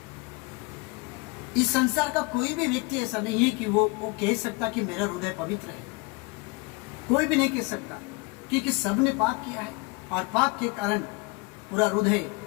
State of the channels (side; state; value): right; quieter; 26.8 dB